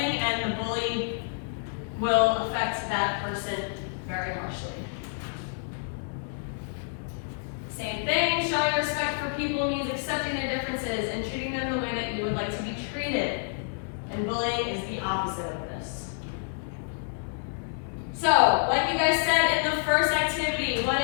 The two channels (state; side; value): silent; right; digital silence